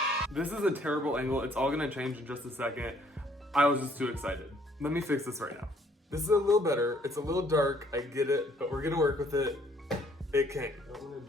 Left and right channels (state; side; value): normal; both; correlation 0.63